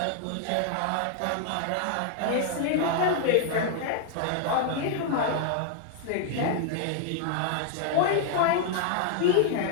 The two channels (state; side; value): different; both; correlation 0.00